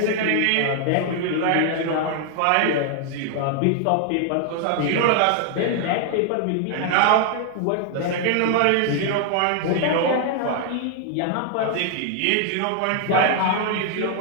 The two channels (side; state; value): both; different; correlation 0.00